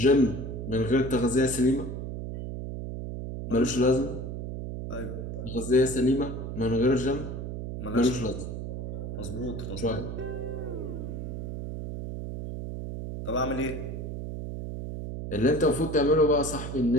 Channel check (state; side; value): noise; right; hum, 6 dB below the sound